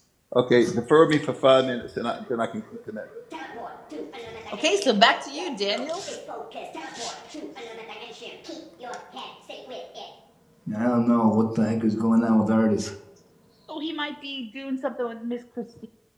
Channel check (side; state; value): both; identical; correlation 1.00